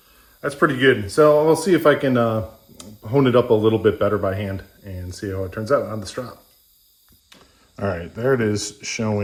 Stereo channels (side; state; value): both; identical; correlation 1.00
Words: pretty good. So I'll see if I can hone it up a little bit better by hand and see how it turns out on the strop. All right, there it is